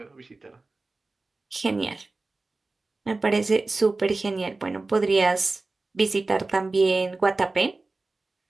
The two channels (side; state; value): left; quieter; 3.4 dB